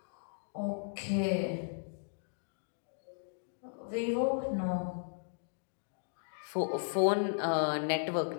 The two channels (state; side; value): silent; right; digital silence